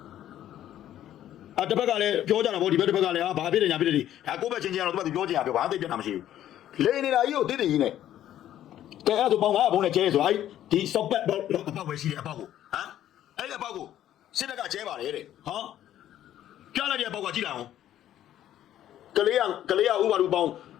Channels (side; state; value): right; quieter; 11.9 dB